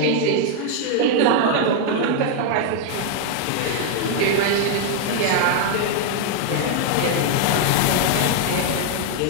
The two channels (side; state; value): both; different; correlation 0.00